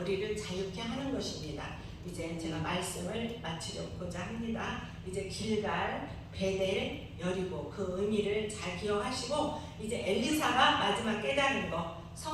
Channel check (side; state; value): both; identical; correlation 1.00